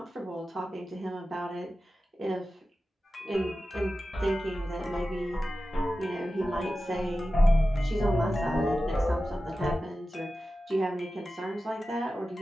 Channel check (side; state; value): both; normal; correlation 0.94